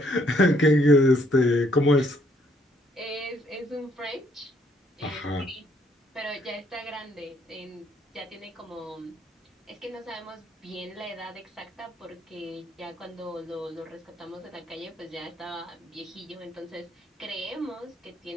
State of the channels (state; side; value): normal; both; correlation 0.68